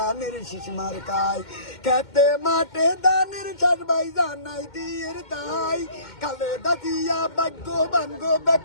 শিশমার কায় খেতে মাঠে দানের চার ভাই জানাই দিয়ের তাই কালে দাদিয়া ভাগ্যবান গো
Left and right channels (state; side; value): late; right; 2.2 ms